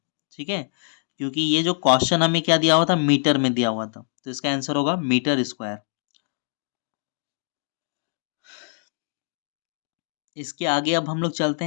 ठीक है, क्योंकि ये जो क्वेश्चन हमें क्या दिया हुआ था, मीटर में दिया हुआ था, तो इसका आंसर होगा मीटर स्क्वायर। इसके आगे अब हम लोग चलते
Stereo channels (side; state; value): right; silent; digital silence